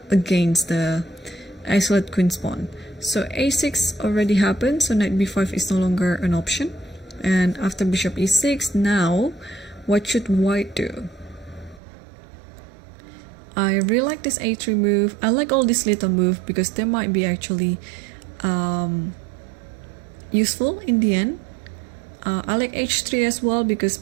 against the isolate queen's pawn. So a6 already happened, so knight b5 is no longer an option. And after bishop e6, now what should white do? I really like this a3 move. I like all these little moves because they might be actually useful in the end. I like h3 as well because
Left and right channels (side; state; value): left; drops out; at 11.8 s